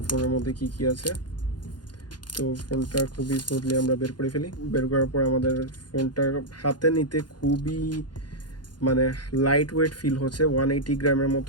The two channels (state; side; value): late; right; 0.70 ms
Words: ফোনের মধ্যে কি আছে। তো ফোনটা খুবই স্মুথলি আমরা বের করে ফেলি। বের করার পর আমাদের ফোনটা হাতে নিতে খুবই মানে লাইট ওয়েট ফিল হচ্ছে, 180 গ্রামের